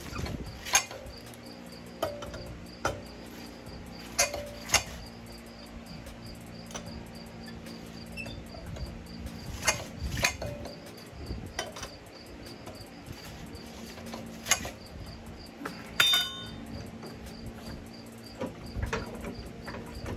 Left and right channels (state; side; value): identical; both; correlation 1.00